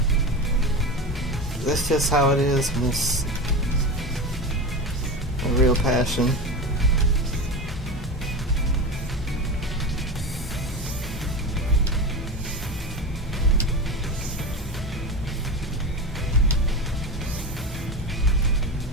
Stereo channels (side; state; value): both; normal; correlation 0.25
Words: That's just how it is, and it's a real passion.